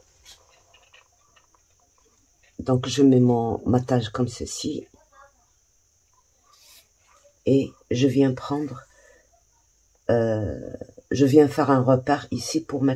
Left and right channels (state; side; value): identical; both; correlation 1.00